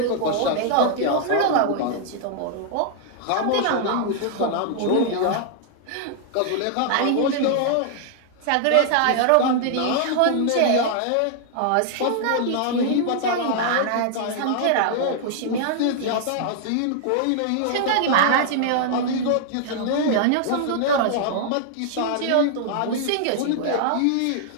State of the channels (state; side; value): different; both; correlation -0.01